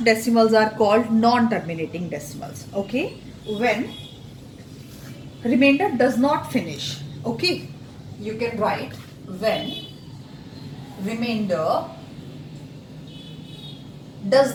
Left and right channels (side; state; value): both; identical; correlation 1.00